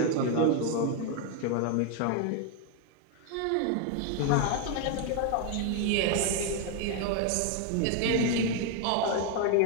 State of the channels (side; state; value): both; different; correlation 0.01